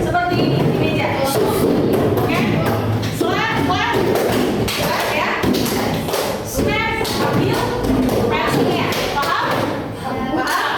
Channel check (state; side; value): identical; both; correlation 1.00